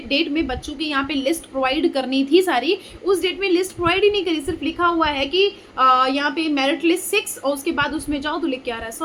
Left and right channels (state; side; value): identical; both; correlation 1.00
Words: में बच्चों की यहाँ पे लिस्ट प्रोवाइड करनी थी सारी, उस डेट में लिस्ट प्रोवाइड ही नहीं करी। सिर्फ लिखा हुआ है कि यहाँ पे मेरिट लिस्ट 6, और उसके बाद उसमें जाओ तो लिख के आ रहा है